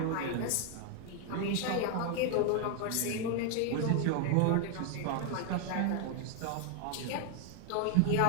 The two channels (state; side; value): different; both; correlation 0.00